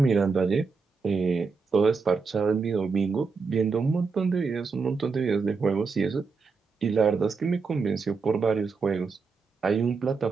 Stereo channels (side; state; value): left; quieter; 4.8 dB